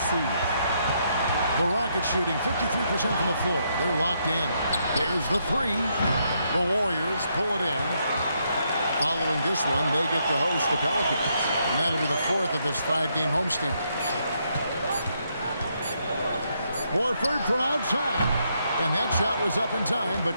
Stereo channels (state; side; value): inverted; both; correlation -0.76